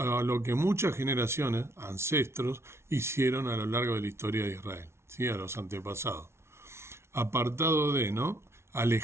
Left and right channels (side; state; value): left; late; 0.13 ms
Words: que muchas generaciones, ancestros, hicieron a lo largo de la historia de Israel, ¿sí? A los antepasados. Apartado de, ¿no?